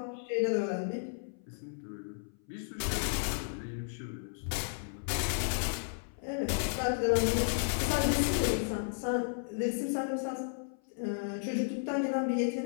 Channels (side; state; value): right; silent; 55 dB below the other